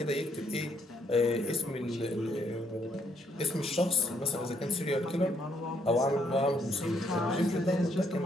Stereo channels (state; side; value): normal; both; correlation 0.71